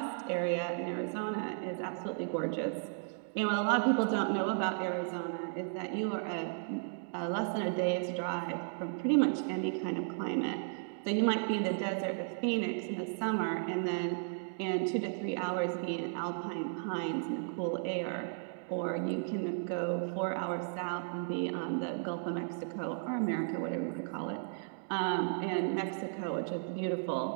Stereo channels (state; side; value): silent; left; digital silence